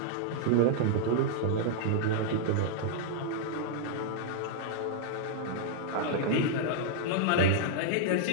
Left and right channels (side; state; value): both; different; correlation -0.01